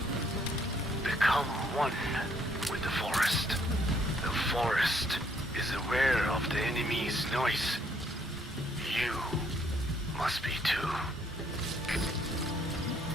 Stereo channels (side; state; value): both; normal; correlation 0.68